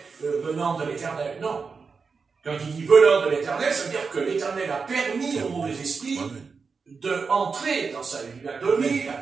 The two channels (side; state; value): left; quieter; 5.0 dB